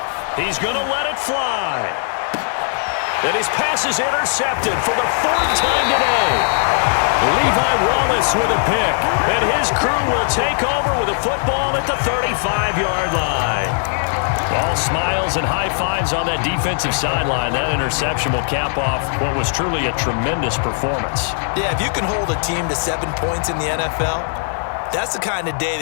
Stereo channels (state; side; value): silent; right; digital silence